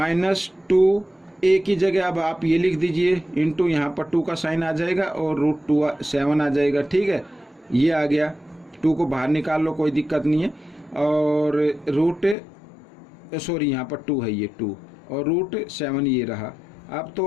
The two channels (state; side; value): drops out; right; at 12.4 s